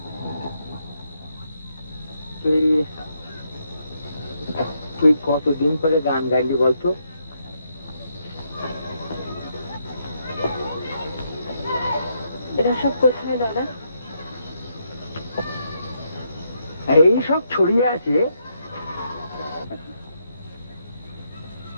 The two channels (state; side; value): inverted; both; correlation -0.78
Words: তুই কত কতদিন পরে গান গাইলি বলতো? এরা সব কোথায় দাদা? এই সব ছড়িয়ে আছে।